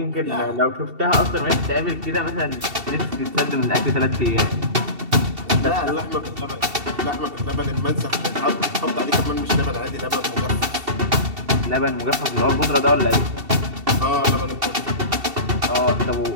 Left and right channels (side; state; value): left; late; 2.7 ms